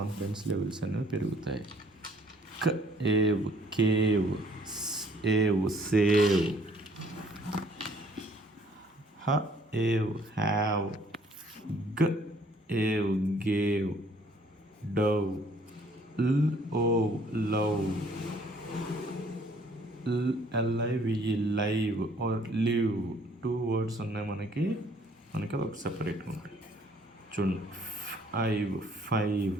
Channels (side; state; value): both; normal; correlation 0.61